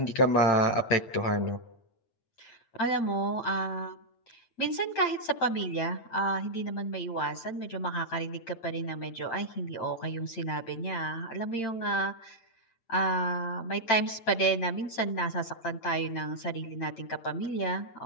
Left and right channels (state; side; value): late; right; 8.9 ms